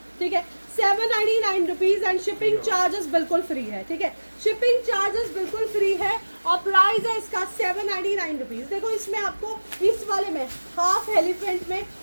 ठीक है। 799 रुपीज़ एंड शिपिंग चार्जेस बिल्कुल फ्री है, ठीक है। शिपिंग चार्जेस बिल्कुल फ्री है और प्राइस है इसका 799 रुपीज़। देखो इसमें आपको इस वाले में हाफ एलिफेंट में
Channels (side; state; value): both; inverted; correlation -1.00